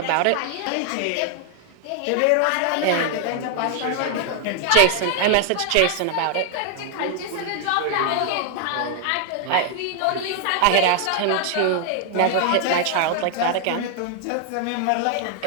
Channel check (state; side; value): different; both; correlation 0.00